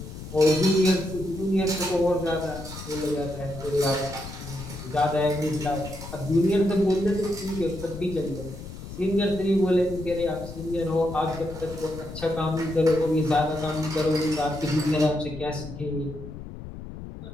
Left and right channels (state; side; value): noise; left; rumble, 11 dB below the sound